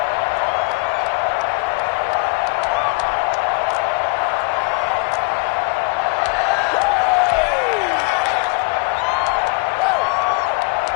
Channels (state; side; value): quieter; right; 28.6 dB